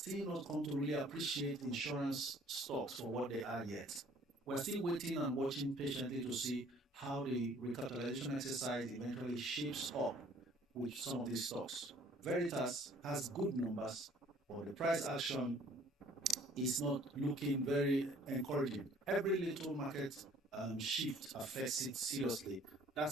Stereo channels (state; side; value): normal; both; correlation 0.56